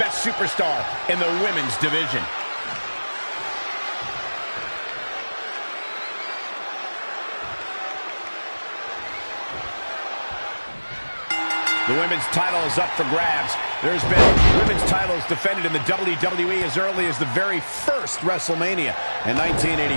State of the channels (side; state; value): both; inverted; correlation -1.00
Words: superstar in the women's division. The women's title is up for grabs. There's been women's titles defended in the WWE as early as the very first WrestleMania in